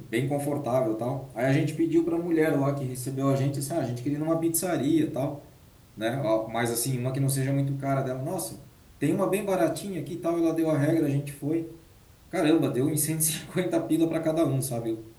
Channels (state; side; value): identical; both; correlation 1.00